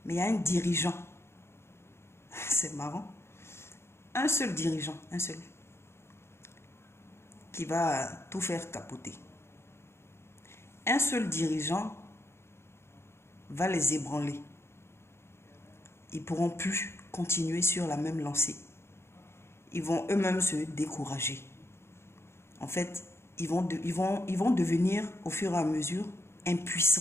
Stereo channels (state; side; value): late; right; 0.12 ms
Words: mais il y a un dirigeant. C'est marrant. Un seul dirigeant, un seul, qui va tout faire capoter. Un seul dirigeant va les ébranler. Ils ne pourront plus continuer sur la même lancée. Ils vont eux-mêmes se décourager. En fait, ils vont devenir au fur et à mesure